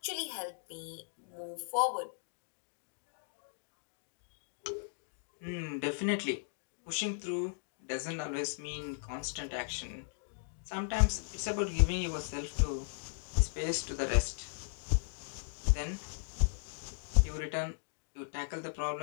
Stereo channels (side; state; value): right; silent; digital silence